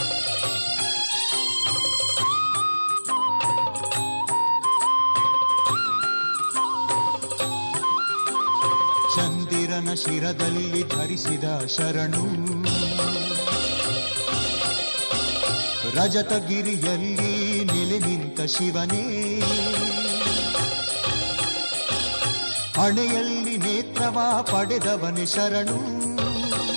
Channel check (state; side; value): inverted; both; correlation -1.00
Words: ಚಂದಿರನ ಶಿರದಲ್ಲಿ ಧರಿಸಿದ ಶರಣು, ರಜತಗಿರಿಯಲ್ಲಿ ನೆಲೆ ನಿಂತ ಶಿವನೇ. ಹಣೆಯಲ್ಲಿ ನೇತ್ರವ ಪಡೆದವನೆ ಶರಣು,